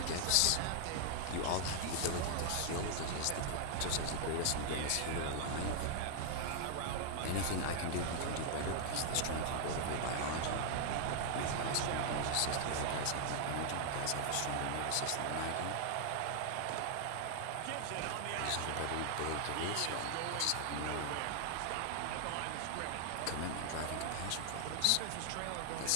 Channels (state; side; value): different; both; correlation 0.00